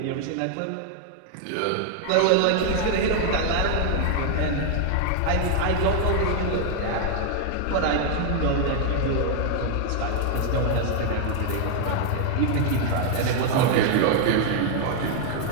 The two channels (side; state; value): both; different; correlation 0.00